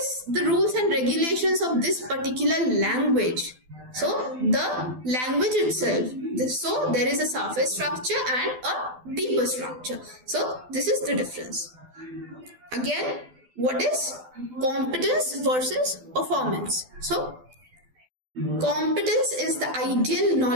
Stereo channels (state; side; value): late; left; 12 ms